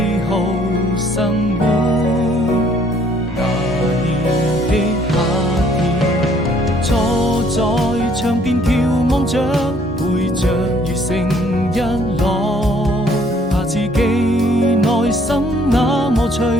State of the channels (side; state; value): both; normal; correlation 0.62